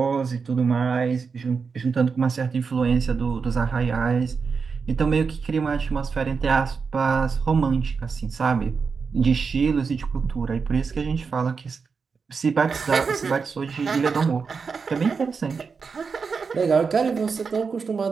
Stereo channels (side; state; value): left; quieter; 5.3 dB